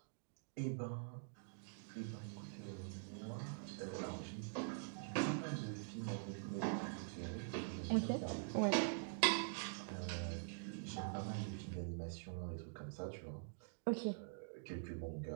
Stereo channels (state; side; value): silent; left; digital silence